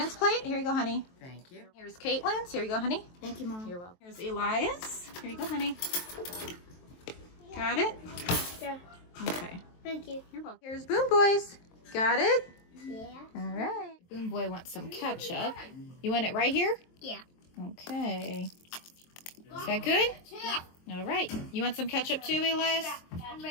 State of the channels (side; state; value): right; late; 23 ms